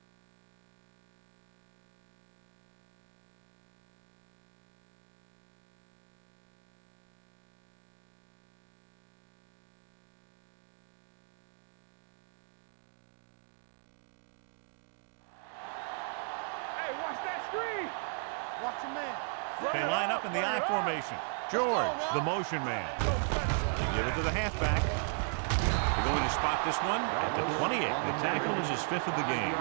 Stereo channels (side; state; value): left; silent; 53 dB below the other